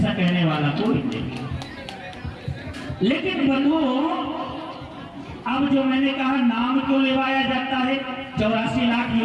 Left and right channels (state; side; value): identical; both; correlation 1.00